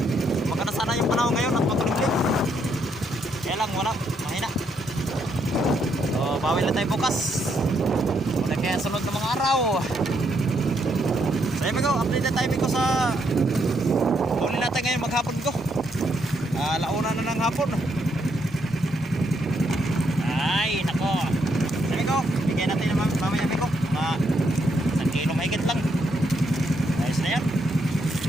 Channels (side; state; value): both; normal; correlation 0.75